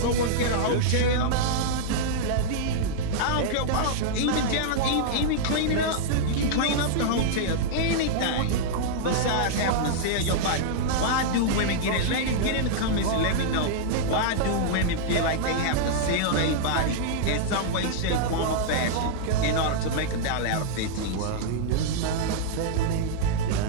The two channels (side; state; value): both; different; correlation -0.02